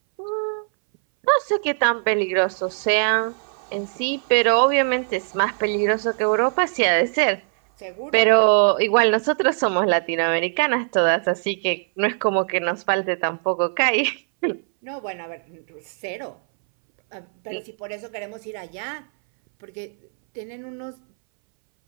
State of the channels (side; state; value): left; silent; 62 dB below the other